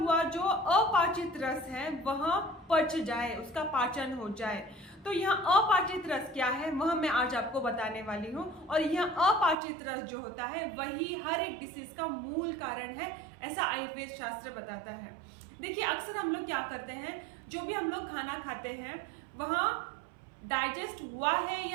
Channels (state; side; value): drops out; left; at 9.6 s